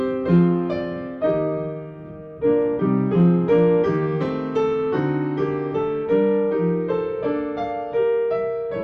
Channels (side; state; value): both; identical; correlation 1.00